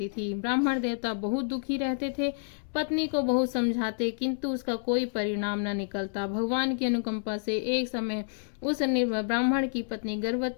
थी। ब्राह्मण देवता बहुत दुखी रहते थे। पत्नी को बहुत समझाते, किंतु उसका कोई परिणाम न निकलता। भगवान की अनुकंपा से एक समय उस ब्राह्मण की पत्नी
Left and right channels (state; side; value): silent; right; 59 dB below the other